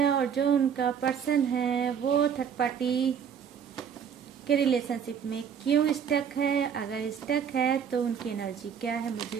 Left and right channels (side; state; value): left; quieter; 7.7 dB